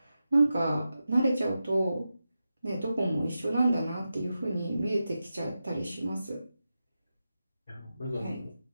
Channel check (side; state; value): both; inverted; correlation -0.91